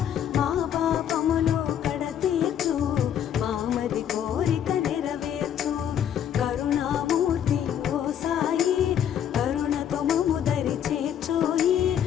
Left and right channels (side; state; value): right; quieter; 9.5 dB